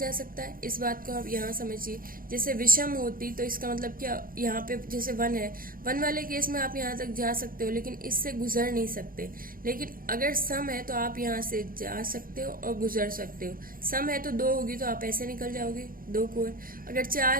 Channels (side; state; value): left; late; 0.41 ms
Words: सकता है। इस बात को आप यहाँ समझिए। जैसे विषम होती तो इसका मतलब क्या, यहाँ पे जैसे 1 है, 1 वाले केस में आप यहाँ तक जा सकते हो लेकिन इससे गुजर नहीं सकते। लेकिन अगर सम है तो आप यहाँ से जा सकते हो और गुजर सकते हो। सम है तो 2 होगी तो आप ऐसे निकल जाओगे, 2 कोर। अगर 4